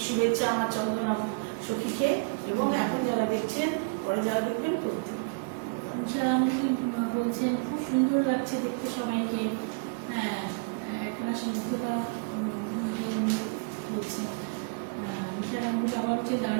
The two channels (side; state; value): left; quieter; 32.3 dB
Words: শুভেচ্ছা আমার চন্দনা সখীকে, এবং এখন যারা দেখছেন, পরে যারা দেখবেন প্রত্যেক। বলছেন খুব সুন্দর লাগছে দেখতে সবাইকে, একটা স্নিগ্ধতা বলছেন। নিশা গাঙ্গুলি আবার হচ্ছে